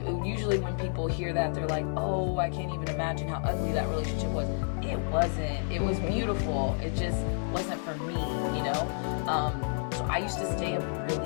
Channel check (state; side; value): silent; right; 58 dB below the other